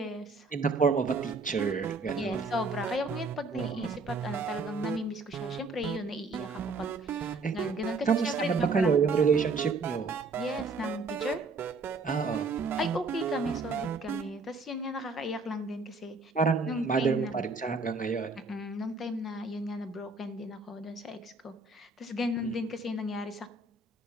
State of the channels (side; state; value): left; quieter; 3.6 dB